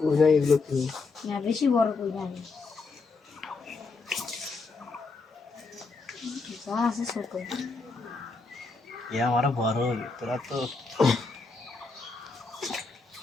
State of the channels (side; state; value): right; quieter; 4.1 dB